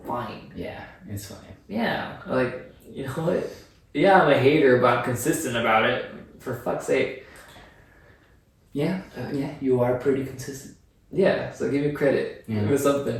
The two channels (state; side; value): identical; both; correlation 1.00